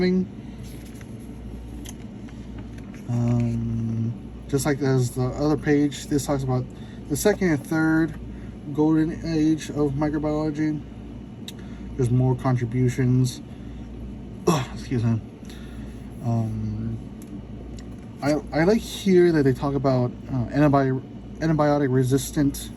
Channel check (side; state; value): both; identical; correlation 1.00